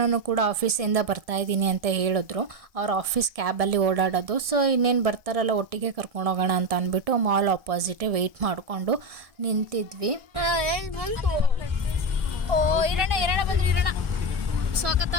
ಕೂಡ ಆಫೀಸಿಂದ ಬರ್ತಾ ಇದ್ದೀನಿ ಅಂತ ಹೇಳಿದ್ರು. ಅವ್ರ ಆಫೀಸ್ ಕ್ಯಾಬಲ್ಲಿ ಓಡಾಡೋದು. ಸೊ ಇನ್ನೇನು ಬರ್ತಾರಲ್ಲ ಒಟ್ಟಿಗೆ ಕರ್ಕೊಂಡು ಹೋಗೋಣ ಅಂತ ಅಂದ್ಬಿಟ್ಟು ಮಾಲ್ ಆಪೋಸಿಟೇ ವೆಯ್ಟ್ ಮಾಡಿಕೊಂಡು ನಿಂತಿದ್ವಿ. ಓ ಇರೋಣ ಬಂದ್ರೆ ಇರೋಣ, ಸ್ವಾಗತ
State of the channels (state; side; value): late; left; 1.7 ms